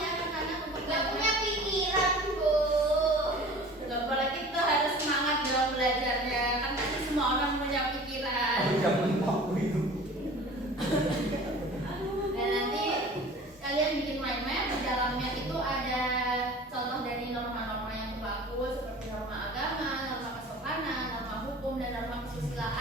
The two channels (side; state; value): both; normal; correlation 0.43